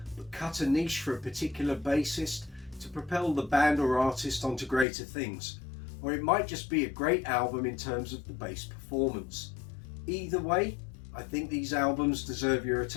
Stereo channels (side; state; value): right; drops out; at 4.9 s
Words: but cut a niche for a particular bassist to propel the band or artist onto greater things, or it might just be a great album in terms of the bass performance. Either way, I think these albums deserve your